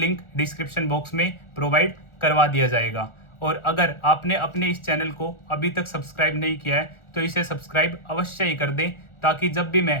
डिस्क्रिप्शन बॉक्स में प्रोवाइड करवा दिया जाएगा। और अगर आपने अपने इस चैनल को अभी तक सब्सक्राइब नहीं किया है तो इसे सब्सक्राइब अवश्य ही कर दें, ताकि जब भी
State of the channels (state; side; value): late; right; 1.4 ms